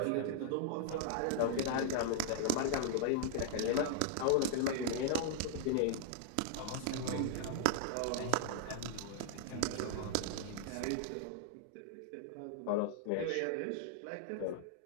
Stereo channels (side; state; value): both; different; correlation 0.00